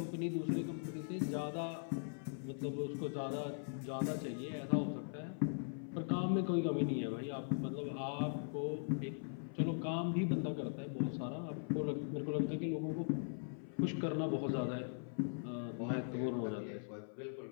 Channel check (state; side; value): silent; right; 51 dB below the other